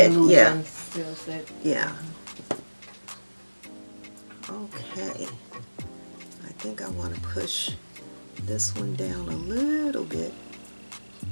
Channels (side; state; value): both; inverted; correlation -1.00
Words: spread, illusion, yeah, still set. yeah. Okay, I think I want to push this one down a little bit.